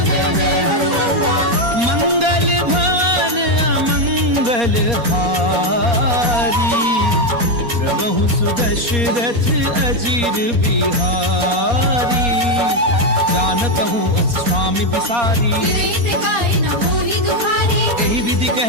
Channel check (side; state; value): left; late; 4.2 ms